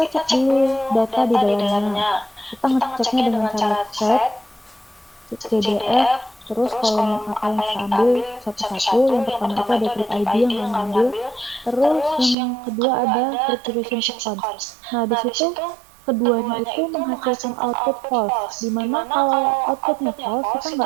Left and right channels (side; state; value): left; drops out; at 12.4 s